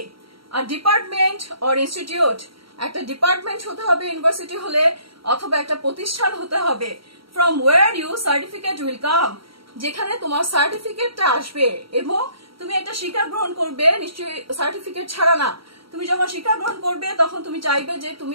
আর ডিপার্টমেন্ট অর ইনস্টিটিউট, একটা ডিপার্টমেন্ট হতে হবে ইউনিভার্সিটি হলে, অথবা একটা প্রতিষ্ঠান হতে হবে। From where you certificate will come, যেখানে তোমার সার্টিফিকেটটা আসবে এবং তুমি একটা শিক্ষা গ্রহণ করবে, নিশ্চয়ই সার্টিফিকেট ছাড়া না। তুমি যখন শিক্ষা গ্রহণ করবে তখন তুমি চাইবে যে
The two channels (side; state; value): left; late; 0.75 ms